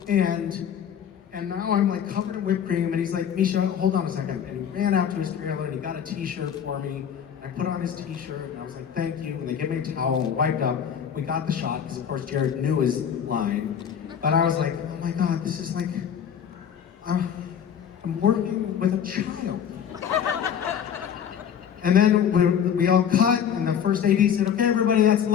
And now I'm like covered in whipped cream, and he's like, Misha, hold on a second. And he ran out to his trailer and he got a t-shirt for me. I put on his t-shirt and I was like, thank you. And they gave me a towel and wiped up. We got the shot because of course Jared knew his line. But I was like, oh my God, this is like, I'm working with a child. And then we all cut, and the first AD said, okay, everybody, that's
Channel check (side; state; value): right; quieter; 8.5 dB